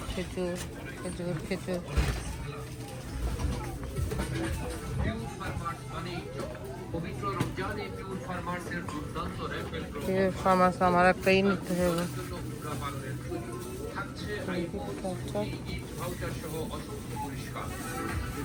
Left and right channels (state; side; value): identical; both; correlation 1.00